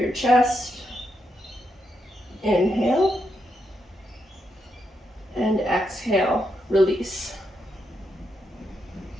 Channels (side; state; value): both; normal; correlation 0.82